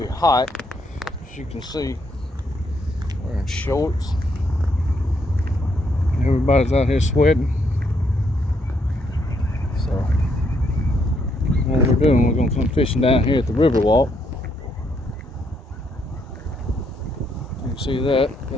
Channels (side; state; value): both; normal; correlation 0.74